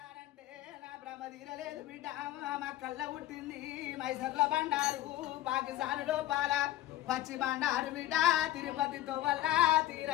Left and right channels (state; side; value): quieter; right; 14.3 dB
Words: నా భ్రమ తీరలేదు బిడ్డ మా కళ్ళ పుట్టింది మైసర్ల బండారు పాకిస్తాన్ లోపాల పచ్చి బండారు బిడ్డ తిరుపతితో వల్ల